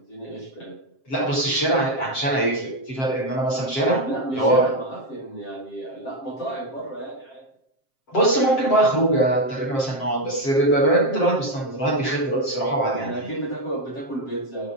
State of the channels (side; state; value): right; late; 7.5 ms